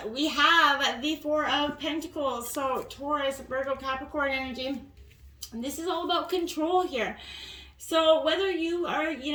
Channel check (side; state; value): both; identical; correlation 1.00